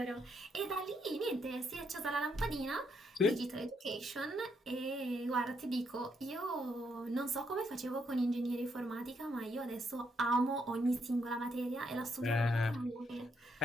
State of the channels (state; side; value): normal; both; correlation 0.75